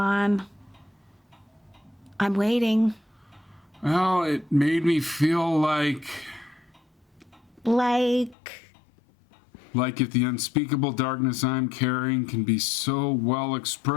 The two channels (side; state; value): right; drops out; at 8.3 s